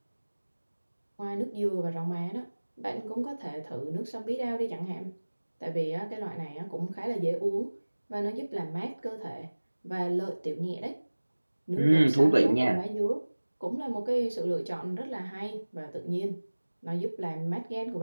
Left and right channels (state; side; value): inverted; both; correlation -1.00